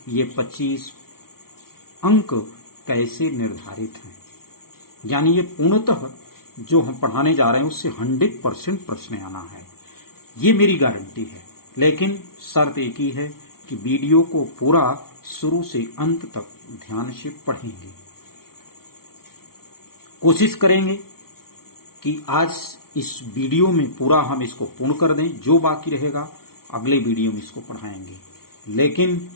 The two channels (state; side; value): late; right; 0.94 ms